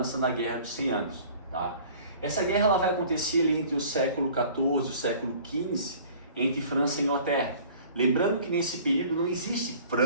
na Guerra dos 100 Anos. Tá? Essa guerra ela vai acontecer ali entre o século XIV e o século XV, entre França e Inglaterra. Lembrando que nesse período não existe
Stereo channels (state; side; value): inverted; both; correlation -0.49